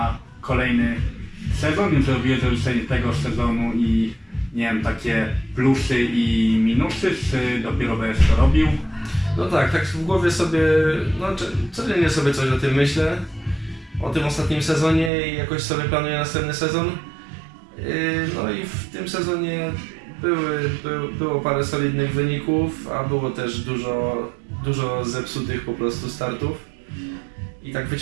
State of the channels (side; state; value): left; drops out; at 15.1 s